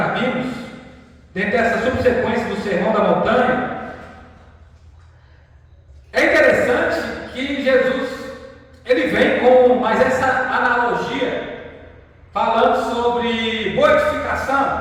vimos, dentro dessa subsequência do Sermão da Montanha, é interessante que Jesus ele vem com mais essa analogia, falando sobre boa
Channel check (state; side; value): identical; both; correlation 1.00